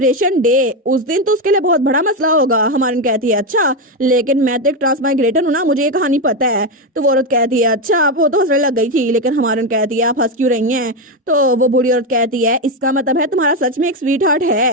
डे उस दिन तो उसके लिए बहुत बड़ा मसला होगा। हमारी कहती है अच्छा लेकिन मैं तो एक ट्रांसमाइग्रेटर हूँ ना, मुझे ये कहानी पता है। तो वो औरत कहती है अच्छा वो तो हंसने लग गई थी, लेकिन हमारी कहती है आप हंस क्यों रही हैं। तो वो बूढ़ी औरत कहती है इसका मतलब है तुम्हारा सच में एक स्वीट हार्ट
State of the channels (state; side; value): normal; both; correlation 0.09